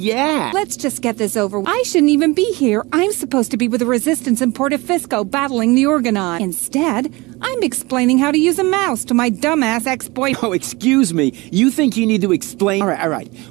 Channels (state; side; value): quieter; left; 23.5 dB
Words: Let's just get this over. I shouldn't even be here. I'm supposed to be with the Resistance in Portofisco battling the Organon. Instead, I'm explaining how to use a mouse to my dumbass ex-boyfriend. Oh, excuse me. You think you need to explain? All right.